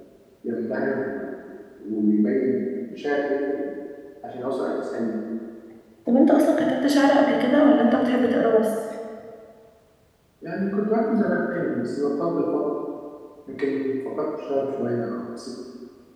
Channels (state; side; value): identical; both; correlation 1.00